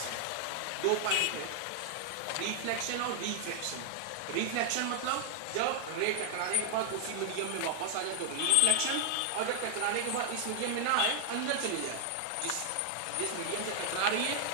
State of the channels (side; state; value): both; different; correlation 0.00